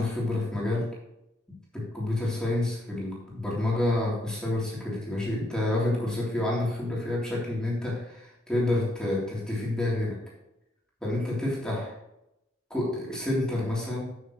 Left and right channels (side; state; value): both; normal; correlation 0.76